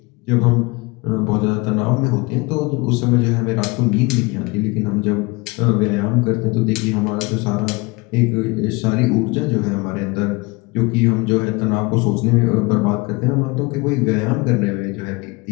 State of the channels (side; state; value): right; quieter; 25.6 dB